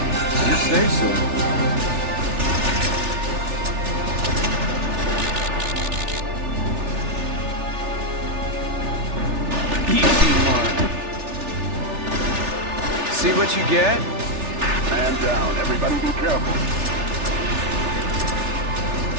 You say so. Easy mark. See what you get? Man down. Everybody be careful.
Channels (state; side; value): late; left; 3.4 ms